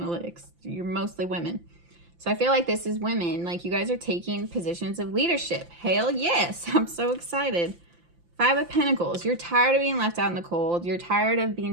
You're mostly women. So I feel like this is women. Like, you guys are taking positions of leadership. Hell yes. I'm so excited. 5 of Pentacles. You're tired of being left out in the cold. You're tired of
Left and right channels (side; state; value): left; late; 5.8 ms